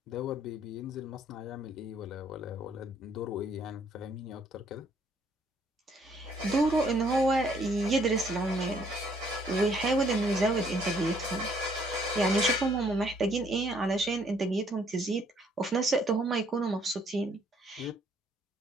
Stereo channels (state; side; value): normal; both; correlation 0.65